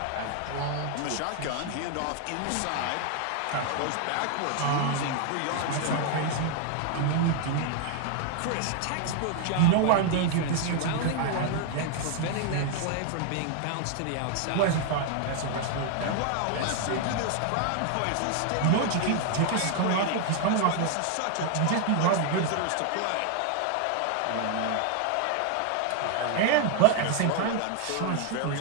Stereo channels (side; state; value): both; different; correlation 0.00